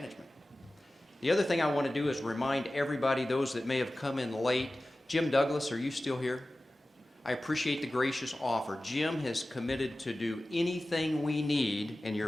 The other thing I want to do is remind everybody, those that may have come in late, Jim Douglas, are you still here? I appreciate the gracious offer. Jim has committed to do anything we need, and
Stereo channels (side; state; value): both; normal; correlation 0.96